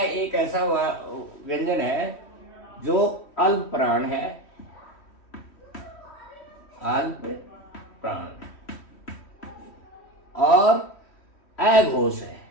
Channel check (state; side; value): late; right; 3.1 ms